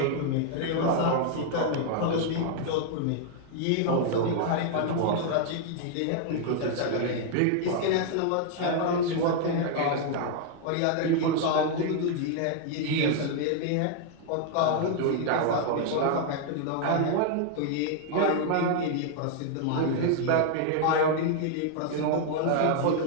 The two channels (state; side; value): different; both; correlation 0.00